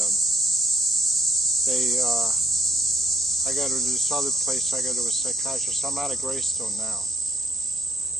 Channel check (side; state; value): both; normal; correlation 0.69